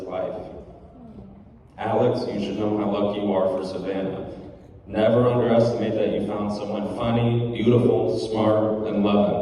life. Alex, you should know how lucky you are for Savannah. Never underestimate that you found someone funny, beautiful, smart, and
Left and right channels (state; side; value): identical; both; correlation 1.00